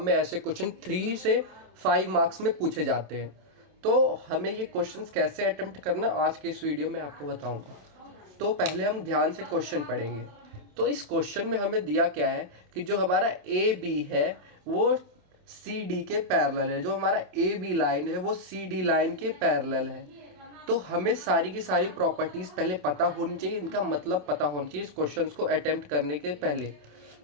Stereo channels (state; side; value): late; left; 27 ms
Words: में ऐसे क्वेश्चन 3 से 5 मार्क्स में पूछे जाते हैं। तो हमें ये क्वेश्चंस कैसे अटेम्प्ट करना आज के इस वीडियो में आपको बताऊंगा। तो पहले हम ध्यान से क्वेश्चन पढ़ेंगे। तो इस क्वेश्चन में हमें दिया क्या है कि जो हमारा ए बी है वो सी डी के पैरेलल है। जो हमारा ए बी लाइन है वो सी डी लाइन के पैरेलल है। तो हमें सारी की सारी प्रॉपर्टीज़ पहले पता होनी चाहिए, इनका मतलब पता होना चाहिए इस क्वेश्चन को अटेम्प्ट करने के पहले।